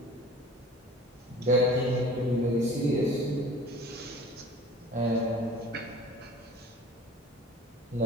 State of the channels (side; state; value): both; normal; correlation 0.45